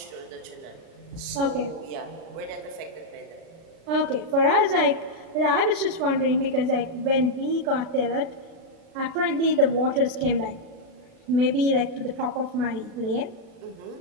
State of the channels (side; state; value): left; late; 36 ms